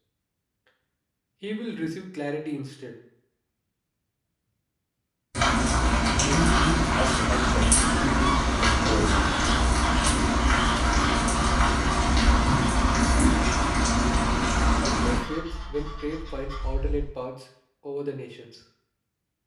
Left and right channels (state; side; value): identical; both; correlation 1.00